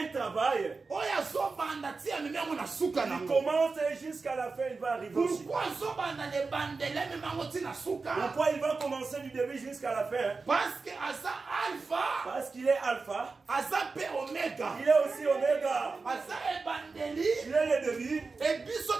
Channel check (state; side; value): quieter; left; 4.2 dB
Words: travail. Il commence jusqu'à la fin, il va arriver aussi. Pourquoi il va commencer du début jusqu'à la fin? Parce qu'il est alpha. Il est aussi oméga. Il est le début. Et